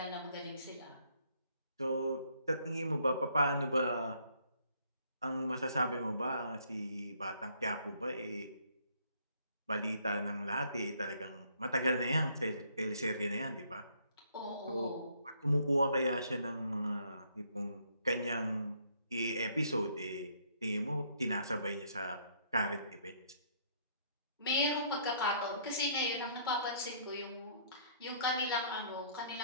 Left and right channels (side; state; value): both; inverted; correlation -0.65